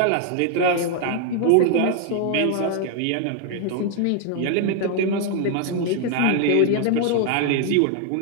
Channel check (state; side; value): different; both; correlation 0.00